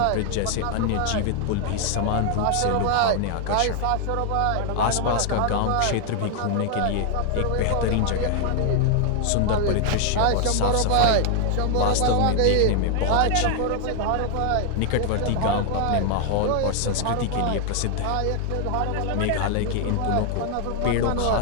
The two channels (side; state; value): both; different; correlation 0.00